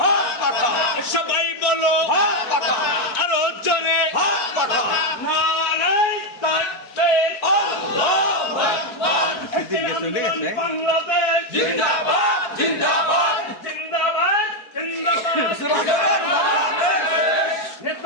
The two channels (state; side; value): late; right; 4.5 ms